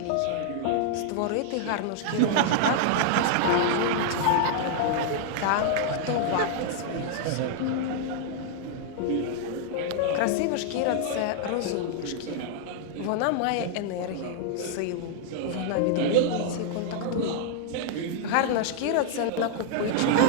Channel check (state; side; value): different; both; correlation -0.01